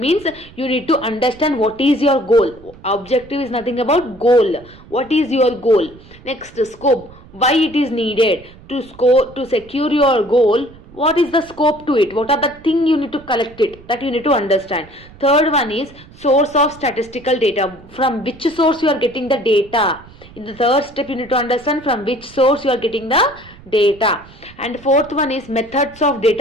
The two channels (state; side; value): noise; right; rumble, 22 dB below the sound